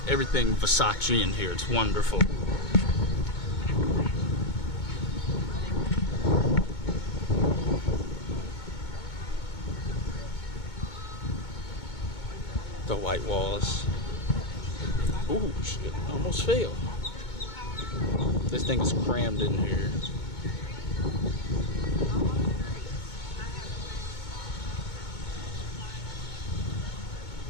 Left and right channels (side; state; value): right; late; 2.2 ms